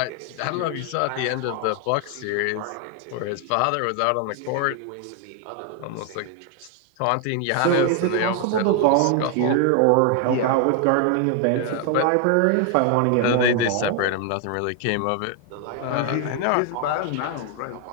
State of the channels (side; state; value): both; different; correlation 0.00